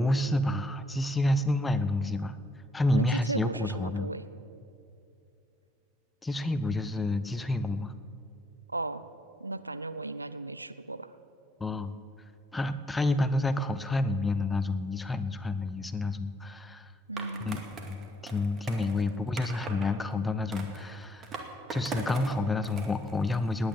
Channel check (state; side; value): normal; both; correlation 0.71